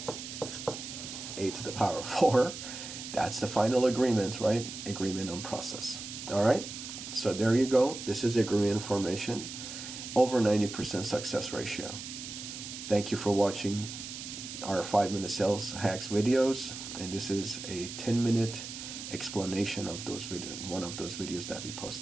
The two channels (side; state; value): right; noise; hiss, 9 dB below the sound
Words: A to the power of 4. That's the final agreement, right? Agreement on process. All right? So there you go. This is agreement information. Over 90% success ratio. Thank you for watching our 5-minute sales hacks videos, and this is a 10-minute explanation of those one of those videos that we